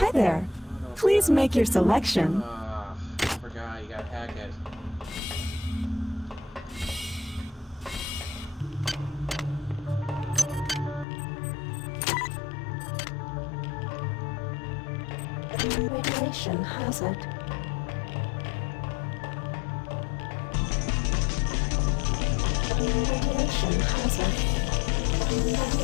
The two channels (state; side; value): drops out; right; at 11.1 s